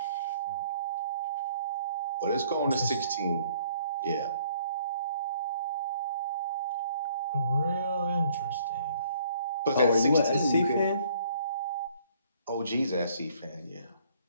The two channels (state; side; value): inverted; both; correlation -0.61